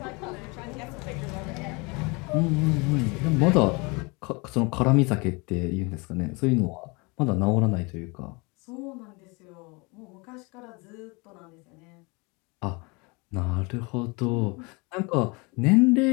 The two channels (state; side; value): quieter; right; 28.4 dB